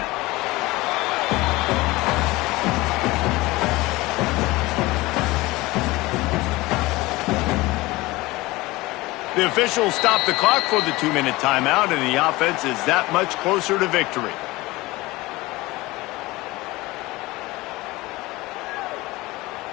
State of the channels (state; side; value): quieter; right; 20.5 dB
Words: The officials stop the clock for the 2-minute timeout, and the offense is that much closer to victory.